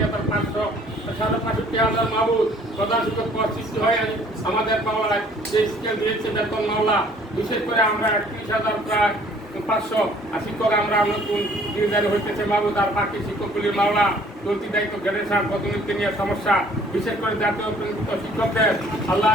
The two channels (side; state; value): both; normal; correlation 0.57